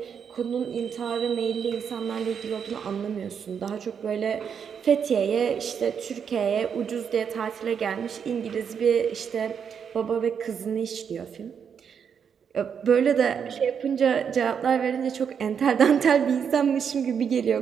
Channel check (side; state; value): left; quieter; 7.2 dB